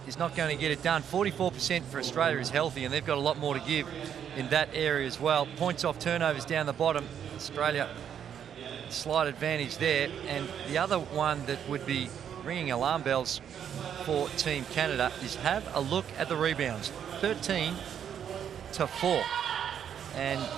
is not going to get it done. 44% for Australia is healthy, and they've got a lot more to give in that area as well. Points off turnovers down the bottom. Australia, slight advantage there. And the other one that would be ringing alarm bells for Team Canada is have a look at the rebounds. 13-4. And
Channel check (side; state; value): left; quieter; 8.7 dB